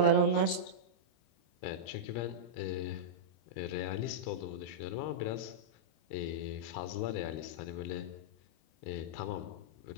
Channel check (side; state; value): right; late; 25 ms